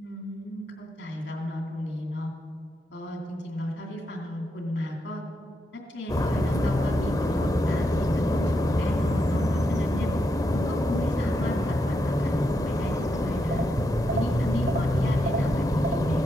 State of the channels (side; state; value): both; normal; correlation 0.83